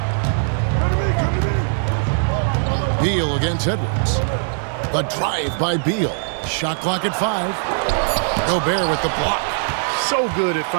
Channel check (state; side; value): silent; left; 66 dB below the other